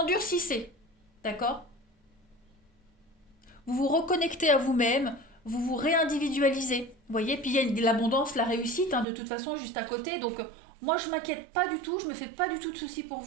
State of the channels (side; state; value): left; drops out; at 9.1 s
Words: d'accord? Vous vous reconnectez à vous-même, vous vous réindividualisez. Vous voyez, puis il y a l'abondance, la réussite, hein, de toute façon, juste à côté. Donc, moi, je m'inquiète pas du tout, je me fais pas du tout de soucis pour